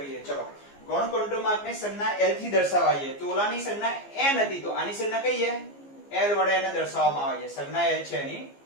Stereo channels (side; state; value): right; late; 15 ms